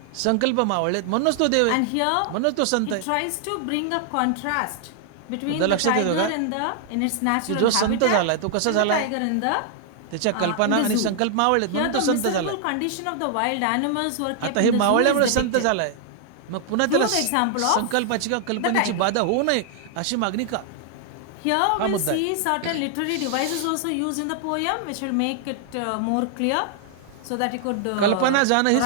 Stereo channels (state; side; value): different; both; correlation 0.00